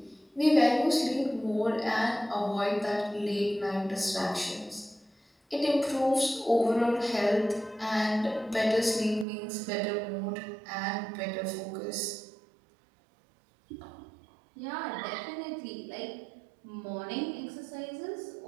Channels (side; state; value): left; drops out; at 9.2 s